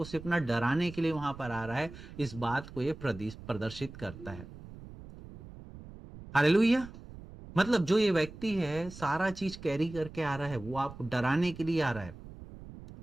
सिर्फ ना डराने के लिए वहां पर आ रहा है। इस बात को ये प्रदर्शित करता है। हालेलुया। मतलब जो ये व्यक्ति है सारा चीज कैरी करके आ रहा है, वो आपको डराने के लिए आ रहा है,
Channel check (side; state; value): right; noise; rumble, 15 dB below the sound